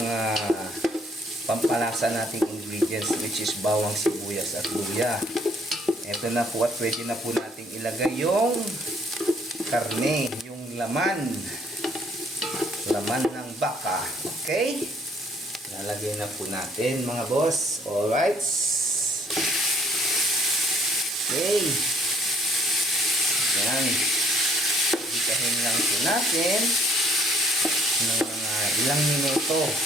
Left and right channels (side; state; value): both; normal; correlation 0.62